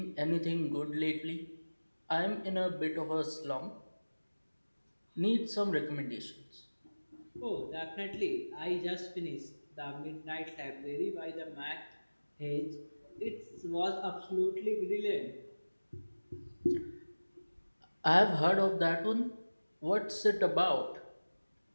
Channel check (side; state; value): both; inverted; correlation -1.00